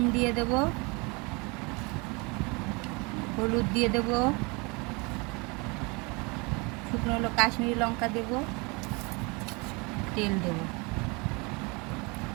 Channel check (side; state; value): left; quieter; 28.4 dB